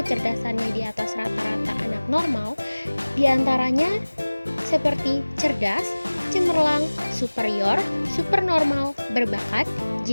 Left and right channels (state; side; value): inverted; both; correlation -1.00